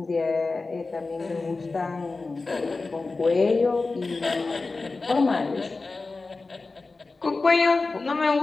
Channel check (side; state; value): right; quieter; 3.7 dB